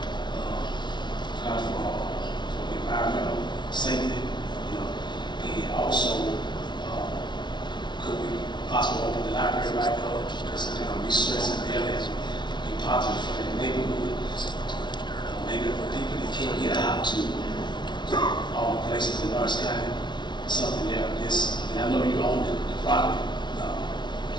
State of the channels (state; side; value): late; right; 0.22 ms